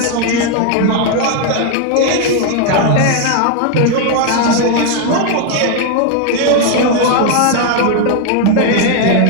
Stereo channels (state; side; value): different; both; correlation 0.00